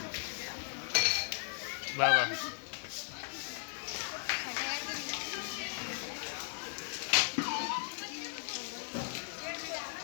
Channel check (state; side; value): silent; right; 53 dB below the other